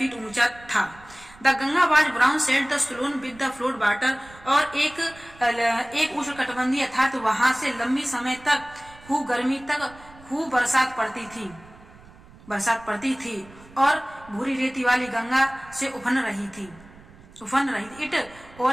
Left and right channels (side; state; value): right; noise; rumble, 22 dB below the sound